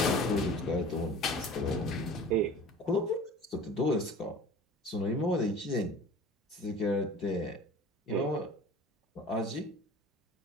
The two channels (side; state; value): both; normal; correlation 0.42